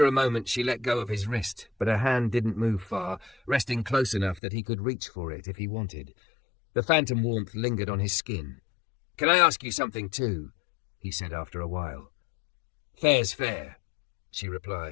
a moment she let go of his wrist, but her hand didn't move far, resting close enough that he could reach for it if he wanted. The phantom warmth lingered on his skin. "Can I ask you something too?" he said after a while. "Fair's fair," she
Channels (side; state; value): right; drops out; at 4.4 s